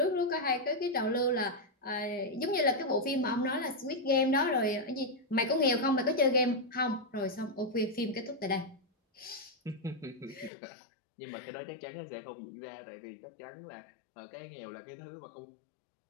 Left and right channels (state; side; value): drops out; right; at 10.5 s